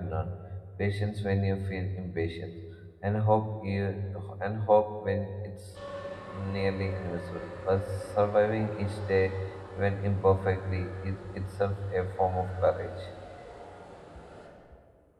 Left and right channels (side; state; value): both; identical; correlation 1.00